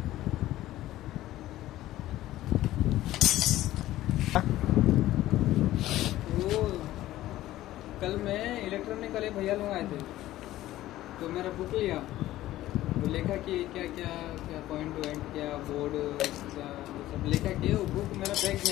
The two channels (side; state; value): right; quieter; 15.0 dB